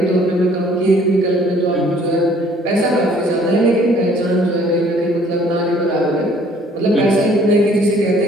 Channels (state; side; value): normal; both; correlation 0.58